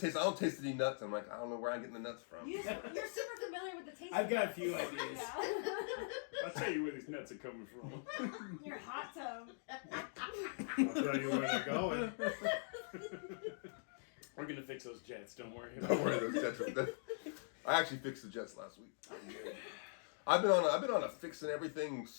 taste any nuts. I'm like, I don't know where I'm getting the nuts from. You're super familiar with the taste. I've got a of few nuts. ideas. I'll tell you where these nuts are coming from. Your hot tub. I'll tell you where they're going. We're gonna fix those jets. Don't worry. Don't worry, those jets. I actually fixed the jets last week. I've been on a fixing everything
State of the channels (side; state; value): right; silent; digital silence